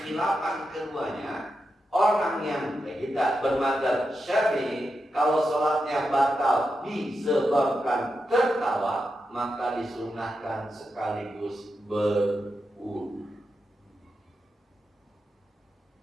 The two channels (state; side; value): normal; both; correlation 0.88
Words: keduanya, orang yang kita bermadzhab Syafi'i, kalau sholatnya batal disebabkan tertawa, maka disunahkan sekaligus berwudu.